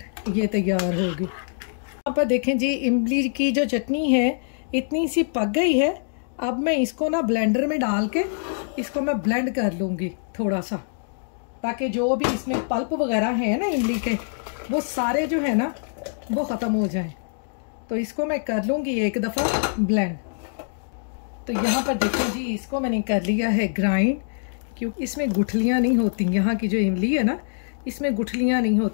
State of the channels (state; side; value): silent; right; digital silence